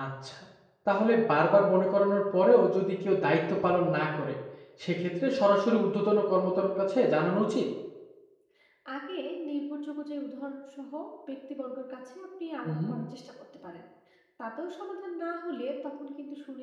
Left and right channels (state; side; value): identical; both; correlation 1.00